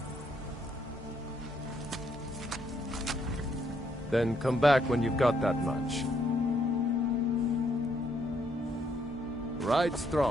Then come back when you've got that much. Ride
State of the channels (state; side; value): normal; both; correlation 0.72